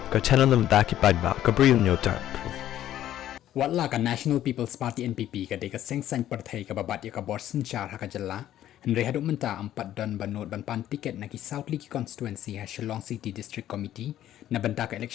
ka channel nabynta ki paidbah ka Bri U Hynñiewtrep. Watla ka National People's Party NPP ka deka seng-seng partai ka babat ya ka borsen char haka jalla Henry haduk menta 4 don banot ban tiket na ki South League Konstitwensi ha Shillong City District Committee nabynta ka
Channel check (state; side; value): quieter; right; 12.3 dB